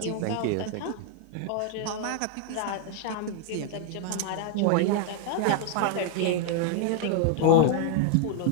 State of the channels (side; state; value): both; different; correlation 0.00